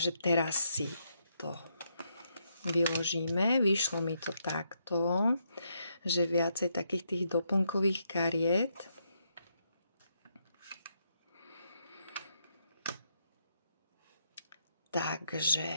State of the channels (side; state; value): both; inverted; correlation -0.78